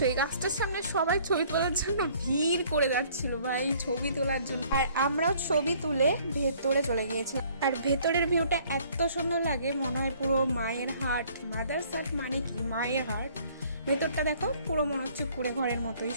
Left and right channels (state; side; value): inverted; both; correlation -0.58